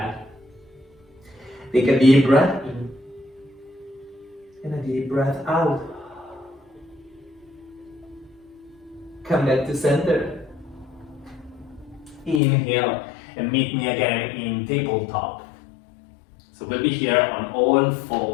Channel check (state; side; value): drops out; right; at 12.4 s